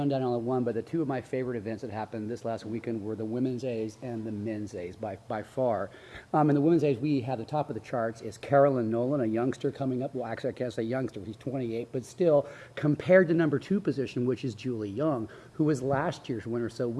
down on the one, but the two of my favorite events that happened this last weekend were the Women's A's and the Men's A's by far. In the Women's A's, we have the top of the charts is Carolyn Nolan, a youngster coming up. Well, actually, I can't say youngster. He's 28, but still, compared to number 2 position, which is Julie Young, who was last year's winner. So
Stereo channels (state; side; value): identical; both; correlation 1.00